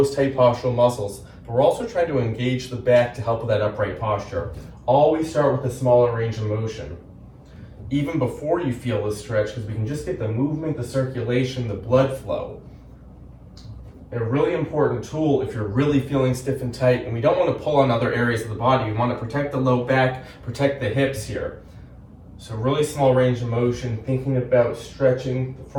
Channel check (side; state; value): both; identical; correlation 1.00